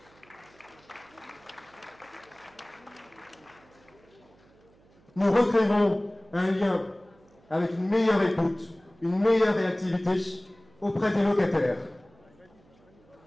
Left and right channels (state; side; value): noise; right; hum, 29 dB below the sound